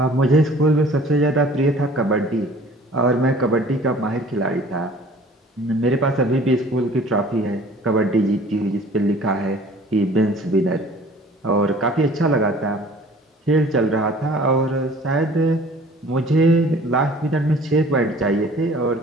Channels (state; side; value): normal; both; correlation 0.50